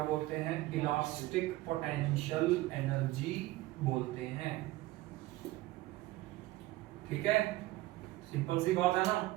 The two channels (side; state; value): left; quieter; 17.8 dB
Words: बोलते हैं, इलास्टिक पोटेंशियल एनर्जी बोलते हैं। ठीक है, सिंपल सी बात है ना।